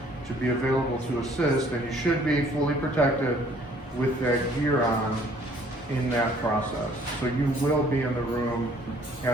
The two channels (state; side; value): normal; both; correlation 0.59